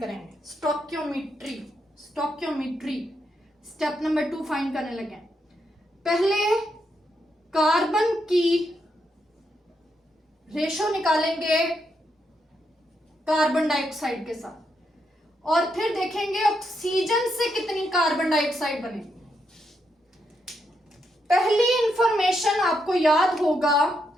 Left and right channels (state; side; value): normal; both; correlation 0.81